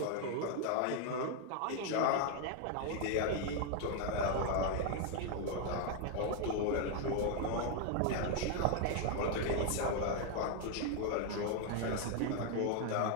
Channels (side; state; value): both; different; correlation 0.00